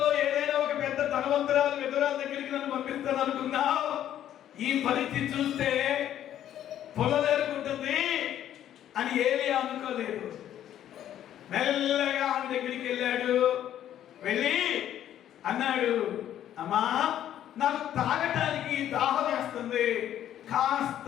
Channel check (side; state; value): right; quieter; 11.2 dB